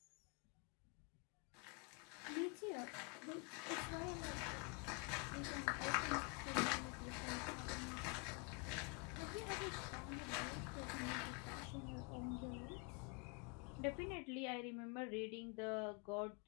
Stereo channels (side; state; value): right; quieter; 34.2 dB